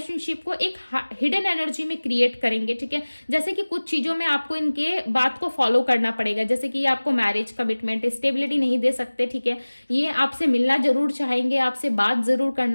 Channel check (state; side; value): inverted; both; correlation -1.00